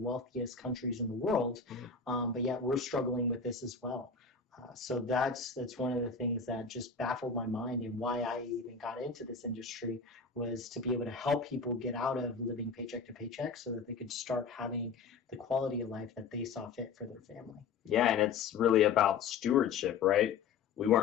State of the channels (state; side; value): quieter; right; 5.4 dB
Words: countries in the world, but yet we're struggling with this as well. So that's one of the things that just baffled my mind, and why I even got into this industry was to be able to help people get out of living paycheck to paycheck so that they could start having the quality of life that they saw fit for their family. Yeah, and it's really about stewardship, right? We